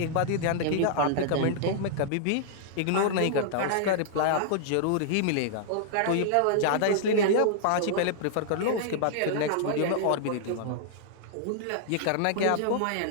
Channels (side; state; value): both; different; correlation -0.01